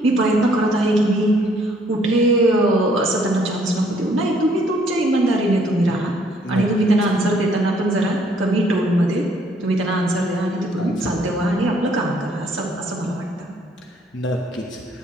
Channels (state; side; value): normal; both; correlation 0.64